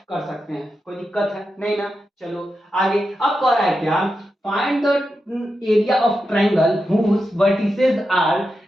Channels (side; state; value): both; normal; correlation 0.89